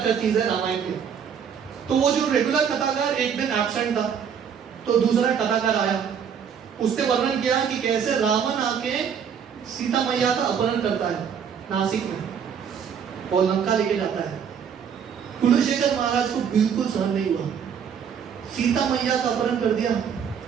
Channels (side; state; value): left; quieter; 7.5 dB